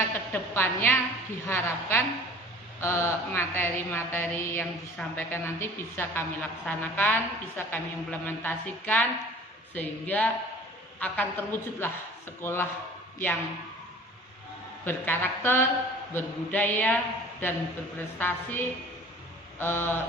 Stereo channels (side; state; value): both; normal; correlation 0.46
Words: kedepannya diharapkan materi-materi yang disampaikan nanti bisa kami laksanakan, bisa kami implementasikan, sehingga akan terwujudlah sekolah yang berkarakter, berbudaya, dan berprestasi,